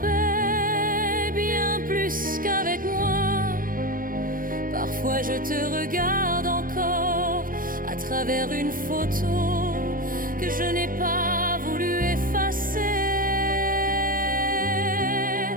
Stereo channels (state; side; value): late; left; 0.40 ms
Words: bien plus qu'avec moi. Parfois je te regarde encore à travers une photo que je n'ai pas voulu effacer.